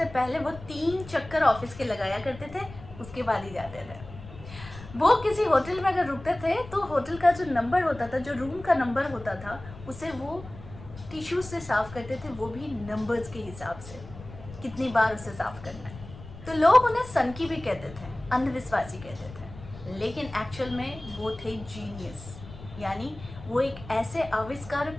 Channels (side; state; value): left; noise; rumble, 16 dB below the sound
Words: पहले वो 3 चक्कर ऑफिस के लगाया करते थे, उसके बाद ही जाते थे। वो किसी होटल में अगर रुकते थे तो होटल का जो नंबर होता था, जो रूम का नंबर होता था, उसे वो टिश्यू से साफ़ करते थे, वो भी नंबर्स के हिसाब से कितनी बार उसे साफ़ करना है। तो लोग उन्हें सनकी भी कहते थे, अंधविश्वासी कहते थे, लेकिन एक्चुअल में वो थे जीनियस। यानी वो एक ऐसे